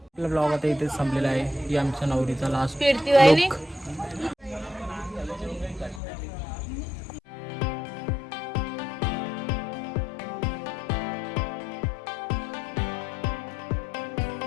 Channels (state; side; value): drops out; right; at 6.0 s